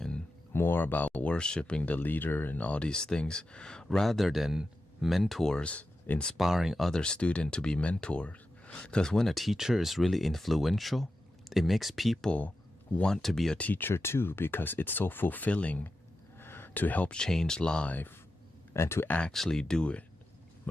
more about worshiping the leader and all these things, rather than mentors inspiring other students to be mentors. Because when a teacher is really influential, it makes people want to be a teacher too, because it's so fulfilling to help change life and to actually do it,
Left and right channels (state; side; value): normal; both; correlation 0.90